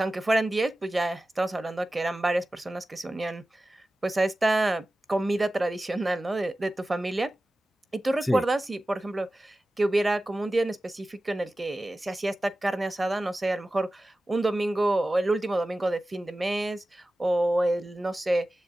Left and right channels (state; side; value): normal; both; correlation 0.95